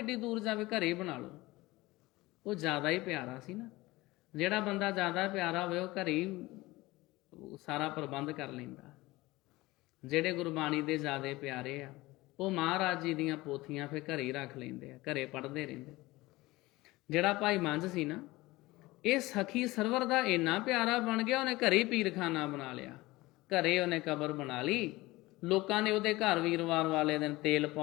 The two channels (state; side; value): quieter; right; 20.0 dB